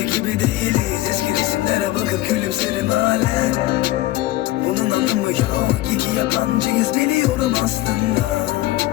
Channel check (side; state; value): right; quieter; 16.3 dB